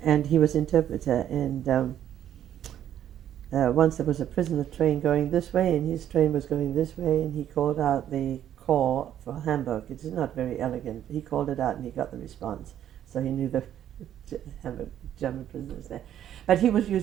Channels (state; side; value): quieter; left; 10.8 dB